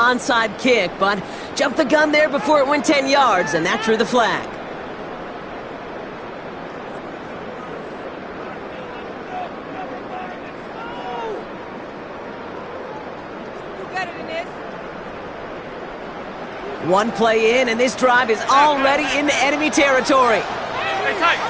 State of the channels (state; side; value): identical; both; correlation 1.00